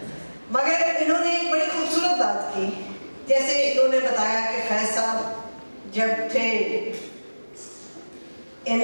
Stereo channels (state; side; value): inverted; both; correlation -1.00